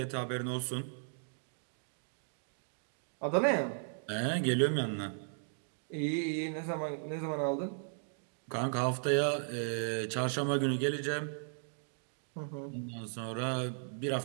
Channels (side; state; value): left; silent; digital silence